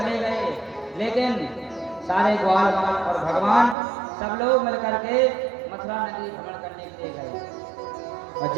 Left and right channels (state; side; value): drops out; left; at 3.8 s